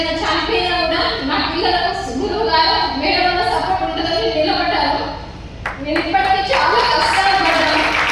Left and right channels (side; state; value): both; identical; correlation 1.00